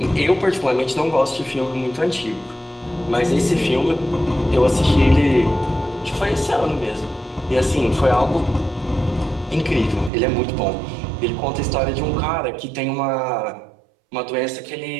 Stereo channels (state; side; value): drops out; left; at 10.1 s